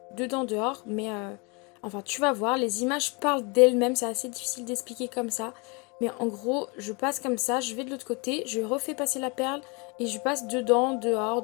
dedans-dehors, mais enfin tu vas voir, les images parlent d'elles-mêmes, c'est assez difficile d'expliquer comme ça. Mais en gros, je passe comme ça, je vais de l'autre côté, je refais passer la perle et je passe dedans,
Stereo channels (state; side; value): quieter; right; 31.0 dB